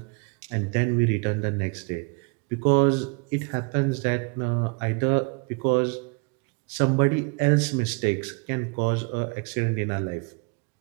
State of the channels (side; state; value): left; quieter; 32.5 dB